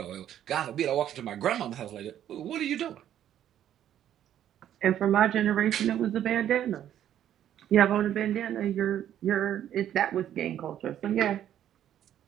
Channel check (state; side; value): quieter; left; 10.9 dB